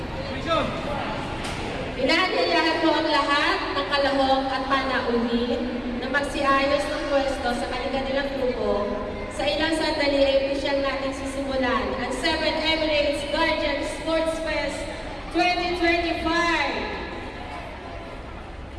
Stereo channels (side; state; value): both; identical; correlation 1.00